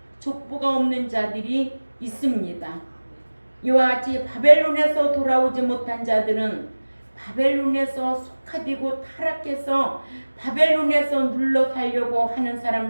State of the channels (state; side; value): inverted; both; correlation -1.00